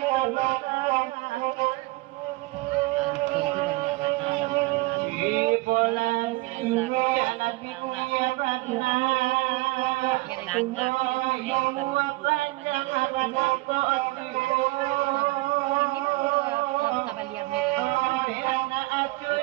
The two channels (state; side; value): quieter; left; 21.5 dB